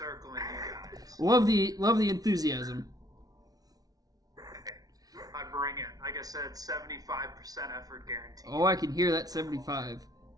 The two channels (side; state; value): left; late; 0.18 ms